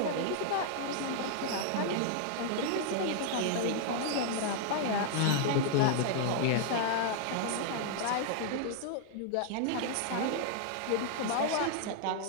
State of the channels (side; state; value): both; different; correlation 0.00